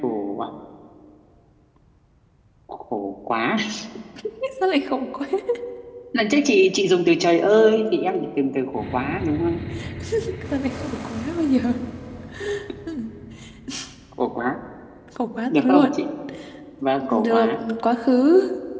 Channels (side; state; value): both; identical; correlation 1.00